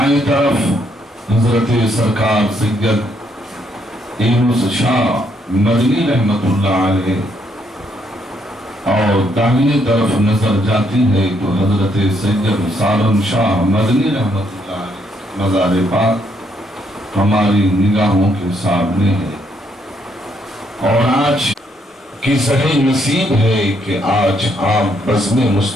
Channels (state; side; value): normal; both; correlation 0.73